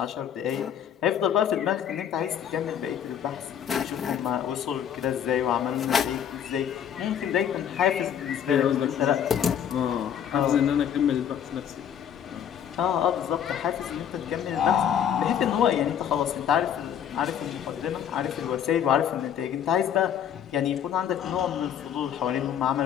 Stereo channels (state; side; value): quieter; right; 9.0 dB